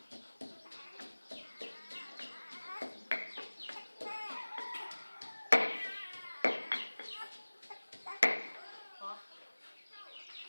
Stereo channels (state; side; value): inverted; both; correlation -1.00